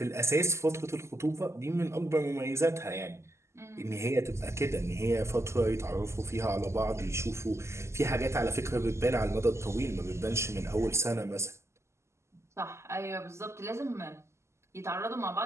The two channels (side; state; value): left; late; 0.13 ms